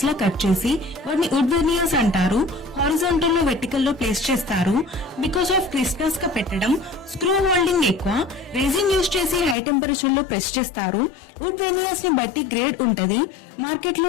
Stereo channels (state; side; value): drops out; right; at 9.6 s